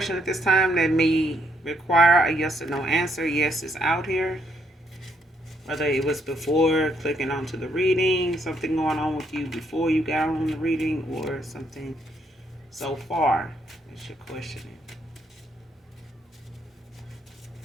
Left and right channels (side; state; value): both; normal; correlation 0.73